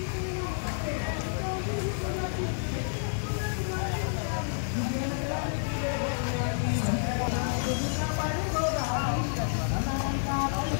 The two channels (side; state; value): right; silent; digital silence